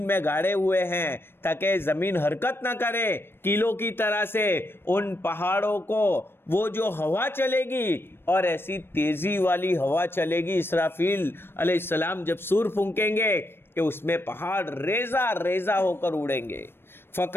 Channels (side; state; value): right; late; 0.11 ms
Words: میں گاڑے ہوئے ہیں تاکہ زمین حرکت نہ کرے کیلوں کی طرح سے. ان پہاڑوں کو وہ جو ہوا چلے گی, اور ایسی تیزی والی ہوا چلے گی, اسرافیل علیہ السلام جب سور پھونکیں گے کہ اس میں پہاڑ ریزہ ریزہ ہو کر اڑیں گے.